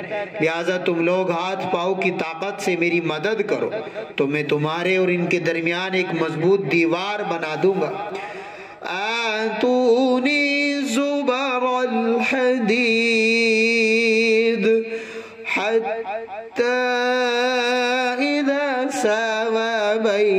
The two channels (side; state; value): both; identical; correlation 1.00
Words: لہٰذا تم لوگ ہاتھ پاؤں کی طاقت سے میری مدد کرو تو میں تمہارے اور ان کے درمیان ایک مضبوط دیوار بنا دوں گا۔ آتونی زبر الحدید حتی اذا ساوى